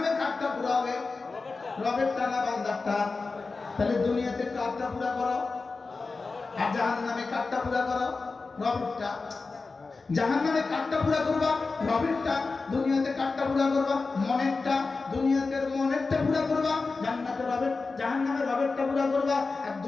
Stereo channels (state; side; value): quieter; right; 4.0 dB